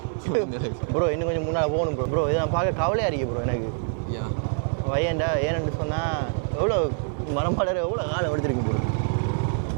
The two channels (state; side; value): silent; left; digital silence